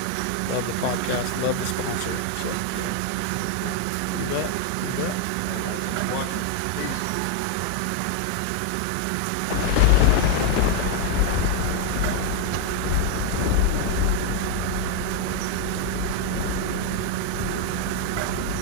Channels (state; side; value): different; both; correlation 0.00